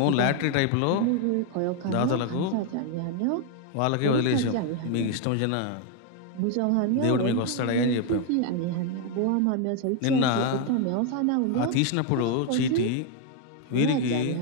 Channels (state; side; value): different; both; correlation 0.01